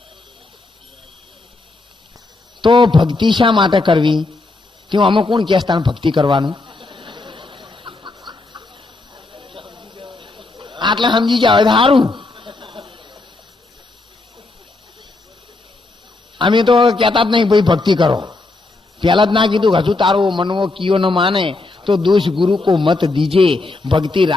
તો ભક્તિ શા માટે કરવી? તેમાં આમાં કોણ કે સ્થાન ભક્તિ કરવાનું? આટલે સમજી જાવ સારું. અમે તો કહેતા જ નહીં ભાઈ ભક્તિ કરો. પેલા જ ના કીધું હજુ તારો મનવો કિયો ન માને તો દોષ ગુરુ કો મત દીજે, ભક્તિ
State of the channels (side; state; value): right; quieter; 3.2 dB